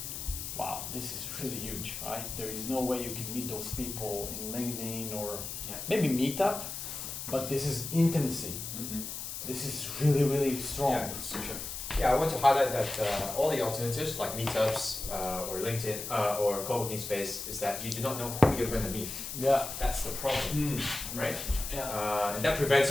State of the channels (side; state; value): left; noise; hiss, 7 dB below the sound